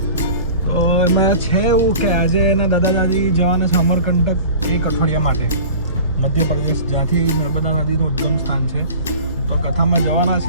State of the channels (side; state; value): both; inverted; correlation -0.41